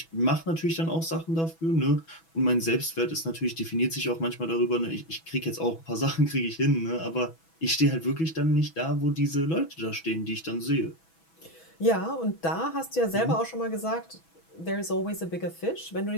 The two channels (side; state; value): right; late; 6.1 ms